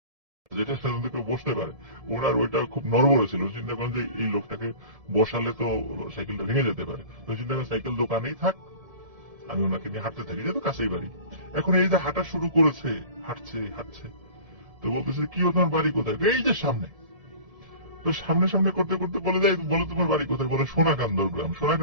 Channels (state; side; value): late; left; 1.7 ms